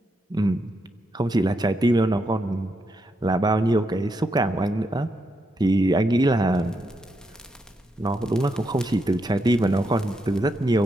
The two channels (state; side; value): normal; both; correlation 0.81